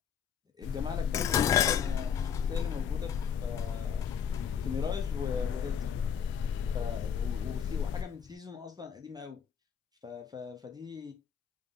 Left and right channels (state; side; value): quieter; right; 7.5 dB